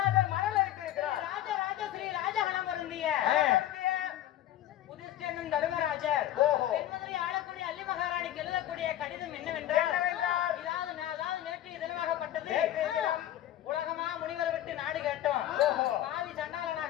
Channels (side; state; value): right; quieter; 12.6 dB